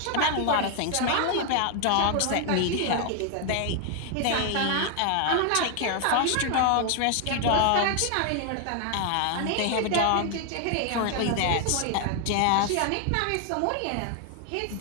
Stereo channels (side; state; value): both; different; correlation 0.00